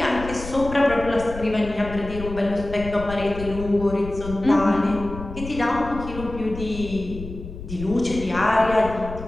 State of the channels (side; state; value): left; noise; rumble, 11 dB below the sound